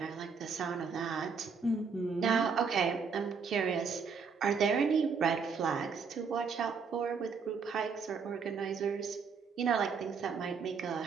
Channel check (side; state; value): left; quieter; 5.6 dB